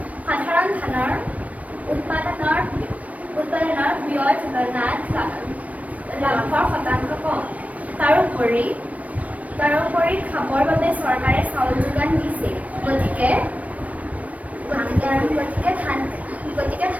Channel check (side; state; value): left; late; 0.068 ms